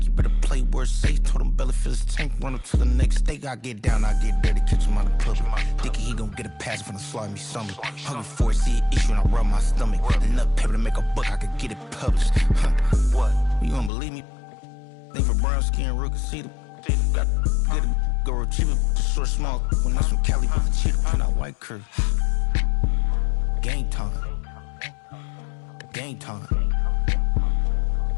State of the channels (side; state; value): right; drops out; at 13.9 s